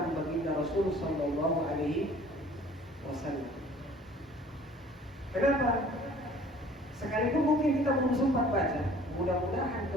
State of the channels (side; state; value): both; normal; correlation 0.51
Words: baginda Rasul Sallallahu Alaihi Wasallam. Kenapa? Sekalipun mungkin kita belum sempat baca, mudah-mudahan